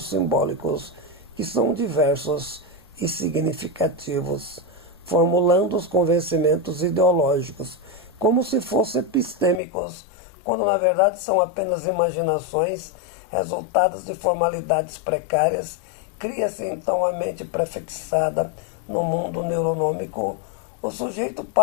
simbólicos, que são diversos e significativos, formulando os convencimentos ideológicos, como se fossem epistêmicos, quando na verdade são apenas imaginações resultadas de formalidades precárias. Cria-se então a mente prefixada no mundo neuronômico. O sujeito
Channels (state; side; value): drops out; right; at 9.6 s